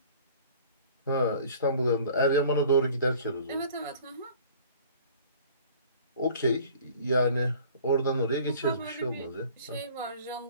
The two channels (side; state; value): both; inverted; correlation -0.49